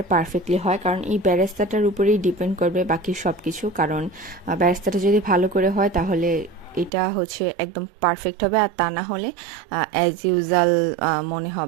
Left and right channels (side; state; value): left; drops out; at 6.9 s